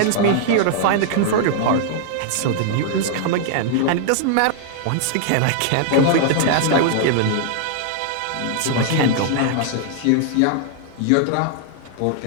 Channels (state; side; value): different; both; correlation -0.01